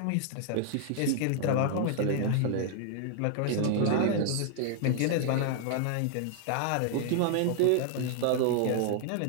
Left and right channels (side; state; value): both; different; correlation 0.00